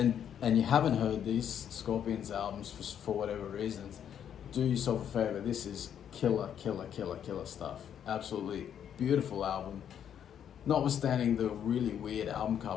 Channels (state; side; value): quieter; right; 9.1 dB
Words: and you haven't heard these Scorpions albums for whatever reasons, do yourself a favor. This is killer stuff. Absolutely beautiful album. Notwithstanding the really weird album